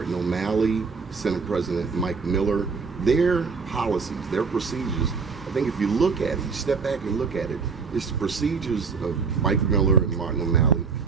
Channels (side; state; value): left; quieter; 5.1 dB